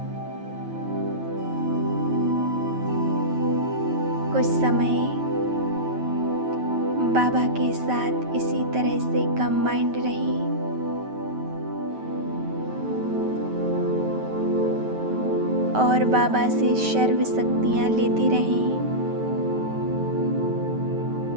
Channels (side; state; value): left; late; 9.2 ms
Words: कुछ समय बाबा के साथ इसी तरह से कंबाइंड रहें। और बाबा से सर्व शक्तियाँ लेते रहें।